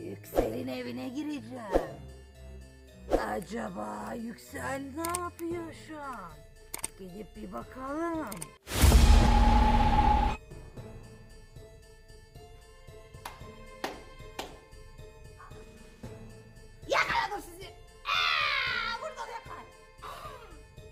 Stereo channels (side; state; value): both; identical; correlation 1.00